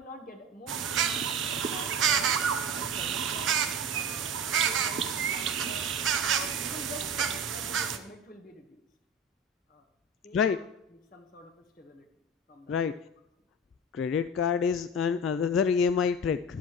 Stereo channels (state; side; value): normal; both; correlation 0.30